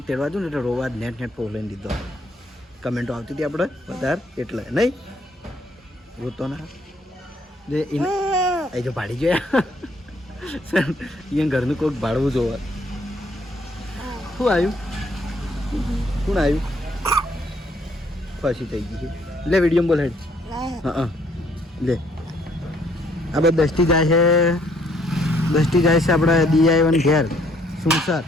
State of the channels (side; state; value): both; normal; correlation 0.66